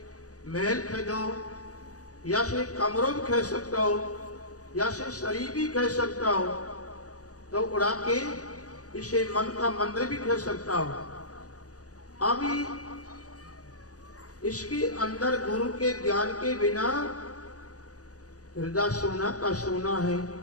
महल खरीदो, या से कमरों भी खरीद सकता हो, या से शरीर भी खरीद सकता हो, तो उड़ा के इसे मन का मंदिर भी खरीद सकता हो। अभी इसके अंदर गुरु के ज्ञान के बिना हृदय सोना का सोना है।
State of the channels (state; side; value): late; right; 0.67 ms